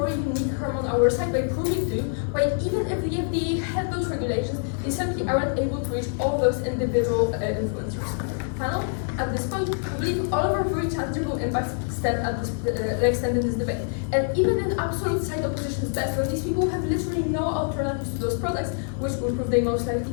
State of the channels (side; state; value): right; silent; 60 dB below the other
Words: harm on our side by proving to why even if the FDA had those regulations, they simply aren't able to reach all those individual influencers. At this point, we believe all of our very tangible impacts stand in this debate. And even in absolute side opposition's best, when these people have literally no alternatives to those products, which will prove they most likely